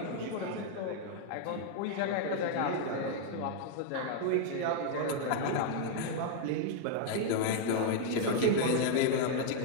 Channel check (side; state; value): both; different; correlation 0.00